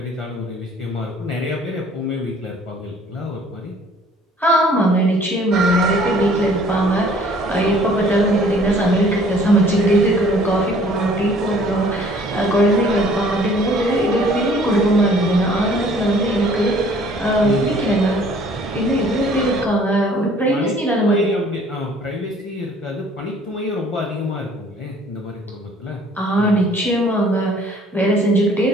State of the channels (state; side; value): normal; both; correlation 0.56